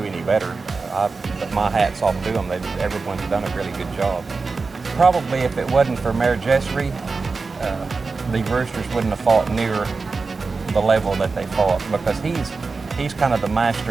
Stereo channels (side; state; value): left; quieter; 4.3 dB